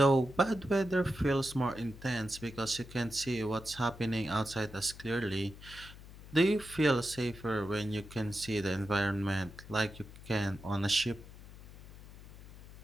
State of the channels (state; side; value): noise; left; hum, 17 dB below the sound